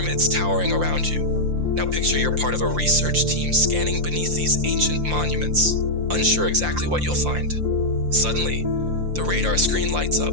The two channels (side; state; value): left; late; 5.7 ms